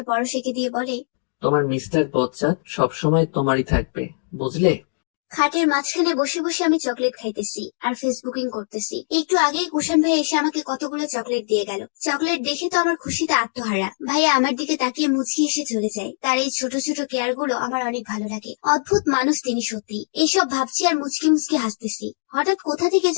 পরশ এঁকে দিয়ে বলে, তোমার মিস্টার বচ্চাত সবসময় তোমারই থাকবে, বুঝলে? খাটের মাঝখানে বসে বসে আমি চকলেট খাইতেছি আর ফেসবুকিং করতেছি। একটু আগেই কুষাণ ভাই এসে আমাকে কতগুলো চকলেট দিয়ে গেল। চকলেট দেখে তো আমার খুশিতে আত্মহারা। ভাইয়া আমার দিকে তাকিয়ে মুচকি এসে চলে যায়। তার এই ছোট ছোট কেয়ার গুলো আমার অনেক ভালো লাগে। অদ্ভুত মানুষ তিনি সত্যি। এইসব ভাবছি আর মুচকি মুচকি হাসতেছি। হঠাৎ কোথা থেকে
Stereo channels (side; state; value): right; silent; digital silence